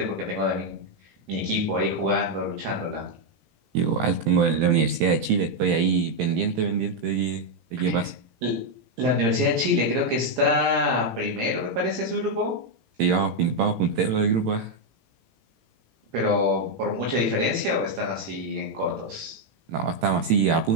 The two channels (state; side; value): late; left; 18 ms